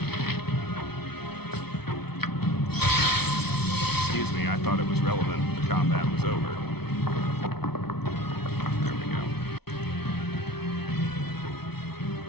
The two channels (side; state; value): right; late; 0.97 ms